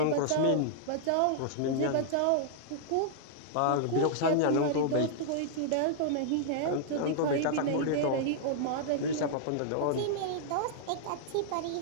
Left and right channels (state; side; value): different; both; correlation -0.01